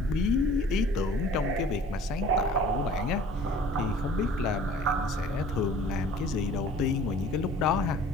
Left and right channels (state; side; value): normal; both; correlation 0.49